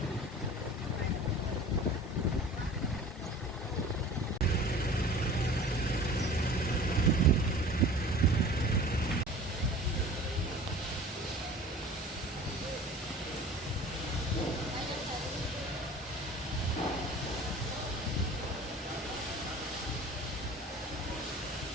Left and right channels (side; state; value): both; normal; correlation 0.42